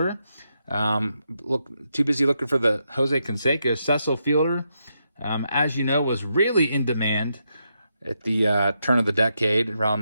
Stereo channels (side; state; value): both; inverted; correlation -0.82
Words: Too busy looking for the Jose Canseco. Cecil Fielder, as you know, was really in demand at the turn of the decade, around